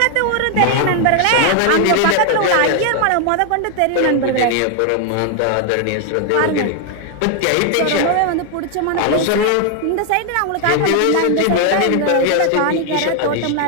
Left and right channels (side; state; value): both; different; correlation 0.01